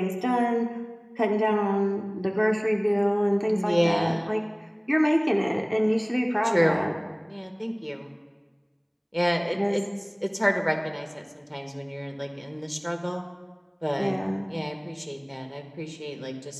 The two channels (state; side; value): identical; both; correlation 1.00